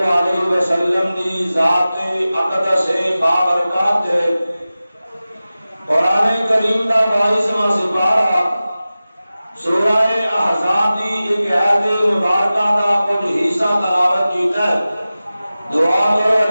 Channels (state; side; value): inverted; both; correlation -0.96